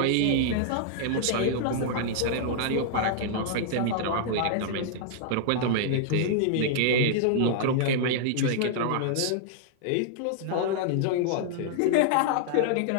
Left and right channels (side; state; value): both; different; correlation -0.01